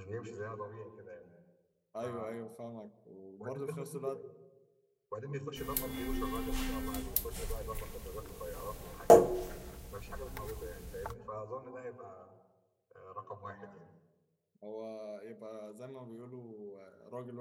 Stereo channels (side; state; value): both; identical; correlation 1.00